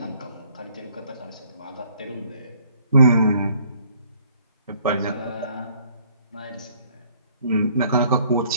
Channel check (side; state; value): both; inverted; correlation -0.61